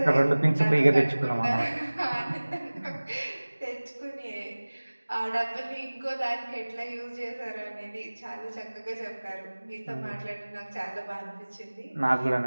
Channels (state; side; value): inverted; both; correlation -1.00